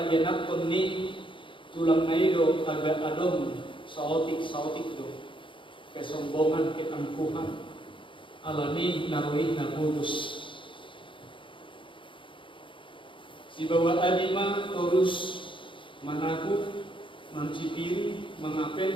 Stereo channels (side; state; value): right; late; 0.24 ms